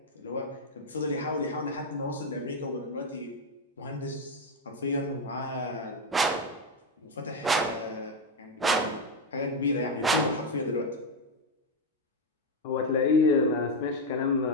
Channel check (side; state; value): both; normal; correlation 0.06